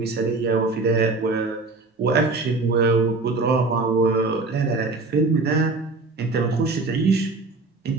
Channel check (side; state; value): left; quieter; 3.6 dB